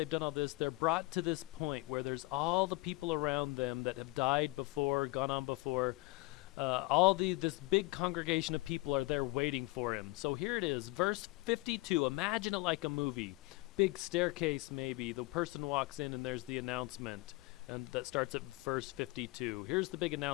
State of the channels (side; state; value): right; quieter; 23.0 dB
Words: done all this, they're brought to this point where there's all the people around them that have died before, gone on before. This big congregation of people are there waiting for him. So here it is, verse 52. Imagine it like a movie. Big staircase maybe. The person walks in and there's the announcement, and that starts at verse 52. Here's the big